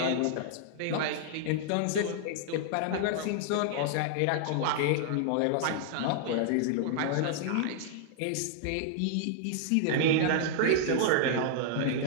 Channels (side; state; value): both; different; correlation -0.01